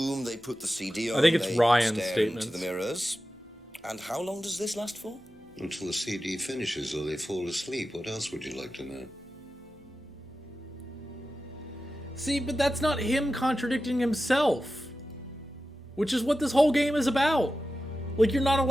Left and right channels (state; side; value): normal; both; correlation 0.93